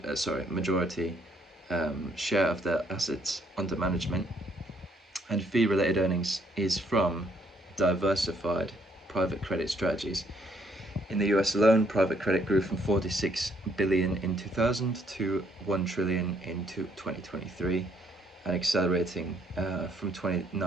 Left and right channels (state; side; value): normal; both; correlation 0.68